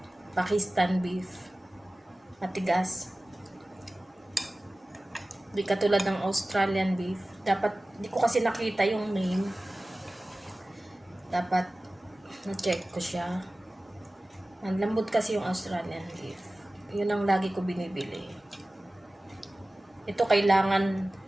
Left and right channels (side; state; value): both; normal; correlation 0.97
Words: Pakistan beef, matigas. Di katulad ng Australian beef. Dapat, di ko kasi nakita yung name. Dapat na-check ko siya. Ang lambot kasi yung Australian beef. Yun ang lagi ko binibili. Ito kailangan